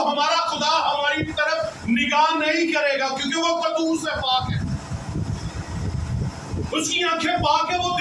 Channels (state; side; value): identical; both; correlation 1.00